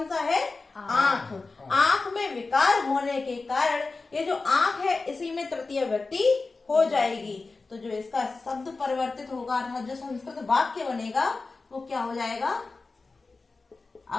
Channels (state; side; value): quieter; right; 3.8 dB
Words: सा है? आंख। आंख में विकार होने के कारण ये जो आंख है इसी में तृतीय व्यक्ति हो जाएगी। तो जो इसका शब्द परिवर्तित होगा, अर्थात जो संस्कृत वाक्य बनेगा वो क्या हो जाएगा?